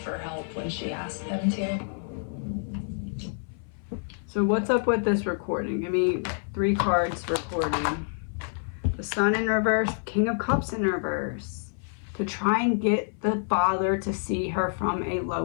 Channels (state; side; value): silent; right; 57 dB below the other